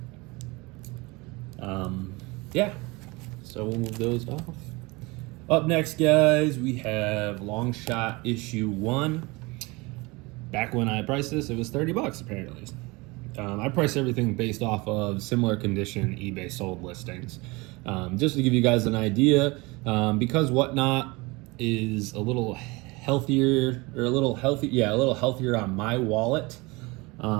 Yeah. So we'll move those off. Up next, guys, we have Long Shot issue 1. Back when I priced this, it was $30 apparently. I price everything based off of similar condition eBay sold listings. Just to give you guys an idea, because Whatnot is a little healthier on my wallet.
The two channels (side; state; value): left; quieter; 24.7 dB